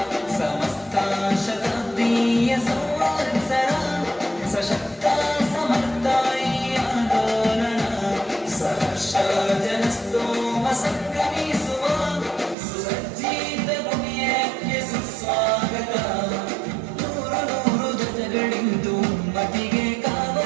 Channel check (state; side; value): drops out; left; at 12.6 s